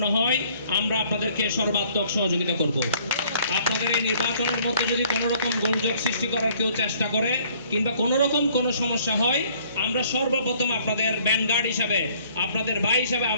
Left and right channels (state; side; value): inverted; both; correlation -0.59